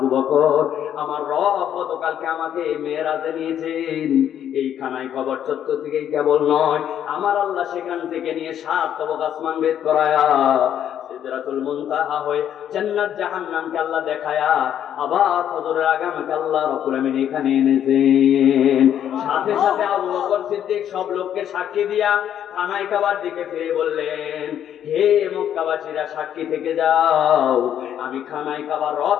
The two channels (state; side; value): quieter; right; 10.0 dB